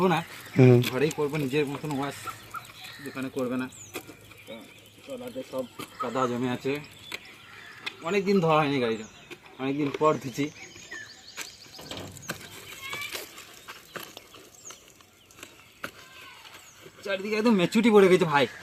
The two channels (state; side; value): identical; both; correlation 1.00